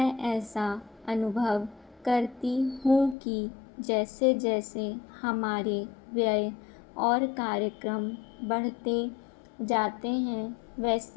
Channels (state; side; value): drops out; right; at 3.2 s